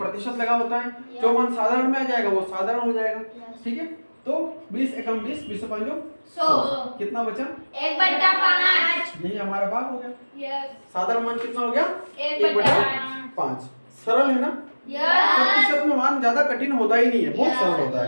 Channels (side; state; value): both; inverted; correlation -1.00